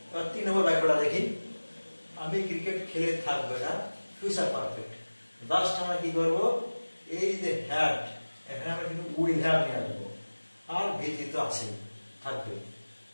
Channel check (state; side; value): inverted; both; correlation -1.00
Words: এবার 3 নম্বর বাক্যটা দেখি, আমি ক্রিকেট খেলে থাকবো, এটা ফিউচার পারফেক্ট। লাস্ট আমরা কি করবো, এই যে হ্যাড, এখানে আমরা কিন্তু উইল হ্যাভ নিয়ে আসবো, আর ভিথিত আছে থাকবে,